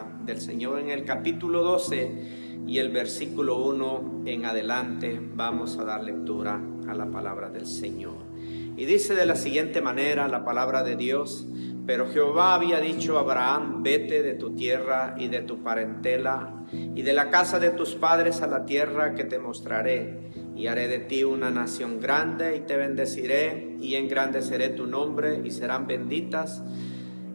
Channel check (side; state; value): both; inverted; correlation -1.00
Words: del Señor en el capítulo 12 y el versículo 1 en adelante. Vamos a dar lectura a la palabra del Señor. Y dice de la siguiente manera la palabra de Dios: pero Jehová había dicho a Abraham: vete de tu tierra y de tu parentela y de la casa de tus padres a la tierra que te mostraré, y haré de ti una nación grande, y te bendeciré, y engrandeceré tu nombre, y serán benditas,